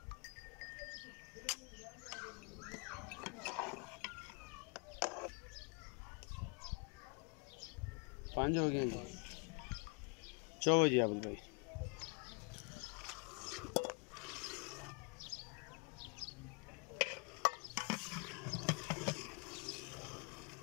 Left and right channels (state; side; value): quieter; right; 33.6 dB